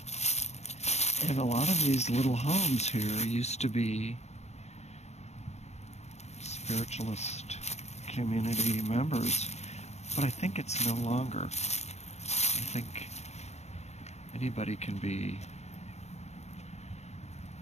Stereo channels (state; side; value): late; right; 0.32 ms